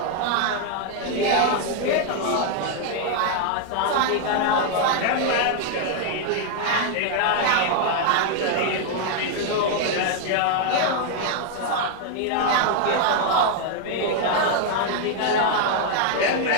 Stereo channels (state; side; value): different; both; correlation 0.00